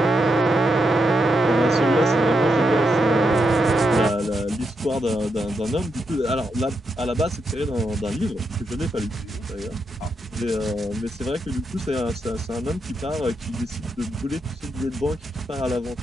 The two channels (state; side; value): normal; both; correlation 0.82